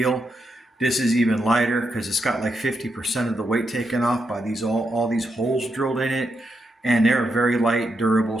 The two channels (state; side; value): normal; both; correlation 0.83